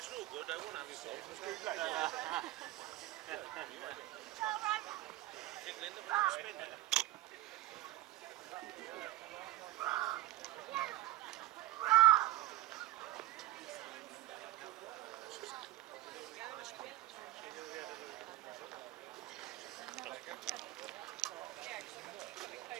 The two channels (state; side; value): quieter; left; 16.2 dB